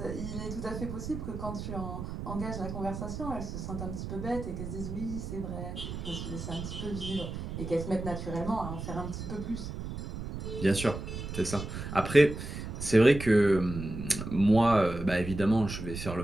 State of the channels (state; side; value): noise; right; rumble, 7 dB below the sound